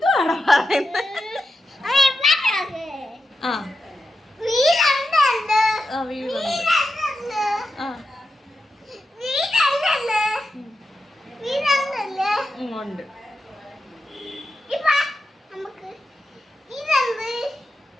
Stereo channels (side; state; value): both; normal; correlation 0.89